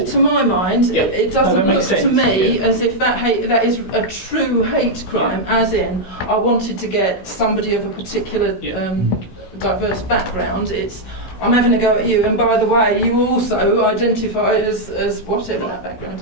To my mind, Yeah. it doesn't No, that look makes to sense, me yeah. as if that is a true hate crime, as in I wanted to get somebody of a particular diverse background. It's I'm having a go at you, and by the way, you also identify as whatever that background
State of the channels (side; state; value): right; late; 16 ms